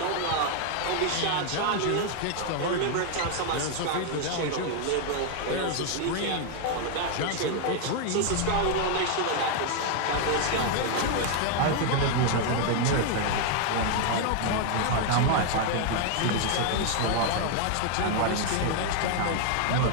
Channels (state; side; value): different; both; correlation 0.00